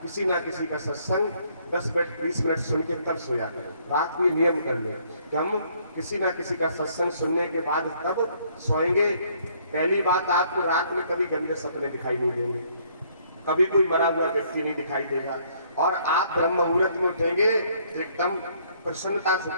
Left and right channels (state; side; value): inverted; both; correlation -0.65